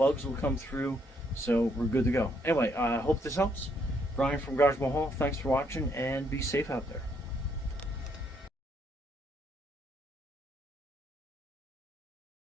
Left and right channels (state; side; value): normal; both; correlation 0.72